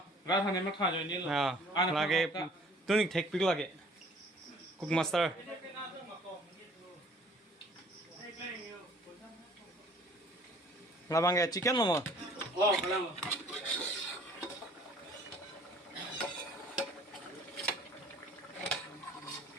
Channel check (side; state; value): both; normal; correlation 0.54